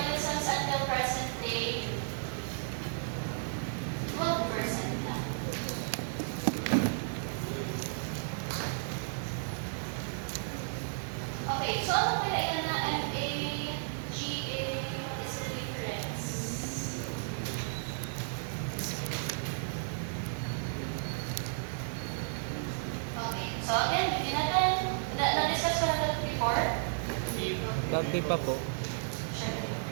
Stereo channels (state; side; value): silent; left; digital silence